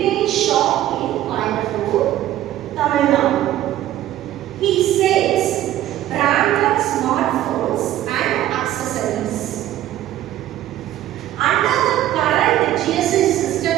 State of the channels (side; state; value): left; quieter; 13.2 dB